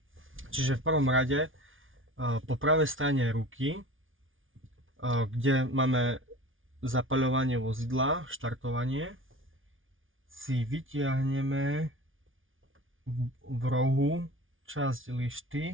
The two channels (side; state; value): left; late; 0.57 ms